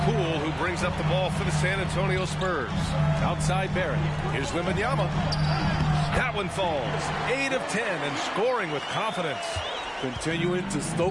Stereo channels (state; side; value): identical; both; correlation 1.00